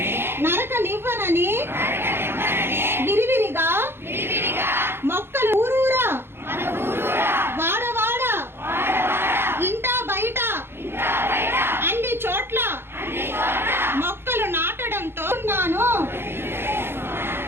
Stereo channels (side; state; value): left; late; 0.11 ms